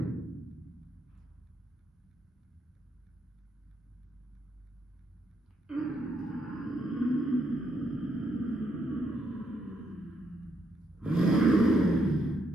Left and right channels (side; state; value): both; normal; correlation 0.76